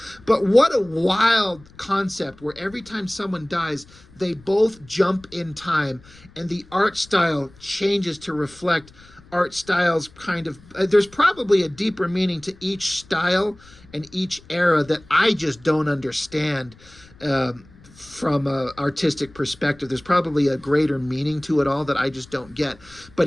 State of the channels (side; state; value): left; noise; rumble, 25 dB below the sound